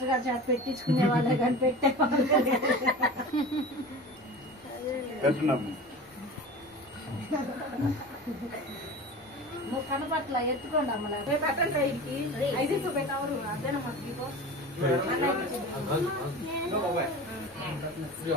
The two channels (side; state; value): both; normal; correlation 0.34